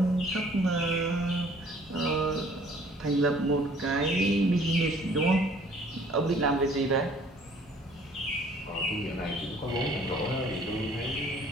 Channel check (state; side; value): normal; both; correlation 0.56